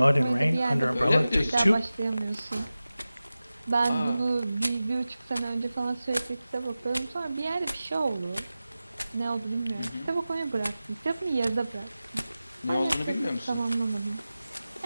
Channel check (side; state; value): both; inverted; correlation -0.95